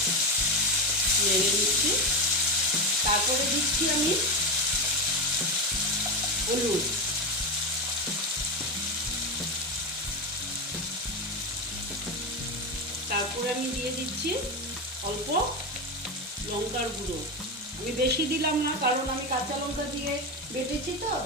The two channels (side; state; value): both; normal; correlation 0.16